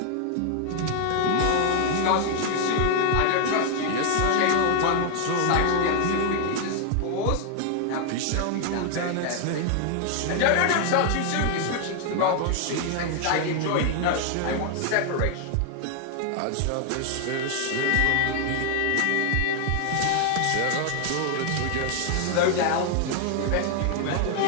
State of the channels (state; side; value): different; both; correlation 0.00